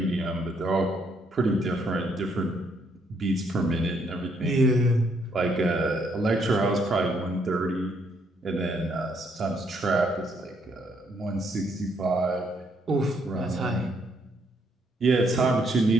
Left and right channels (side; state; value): both; normal; correlation 0.72